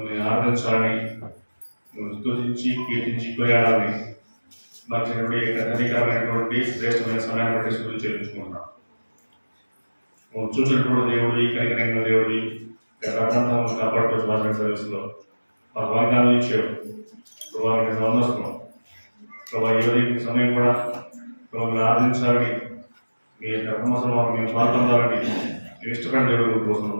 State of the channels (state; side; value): inverted; both; correlation -1.00